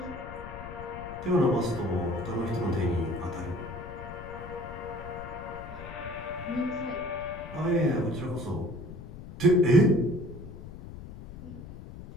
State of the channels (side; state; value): left; noise; rumble, 13 dB below the sound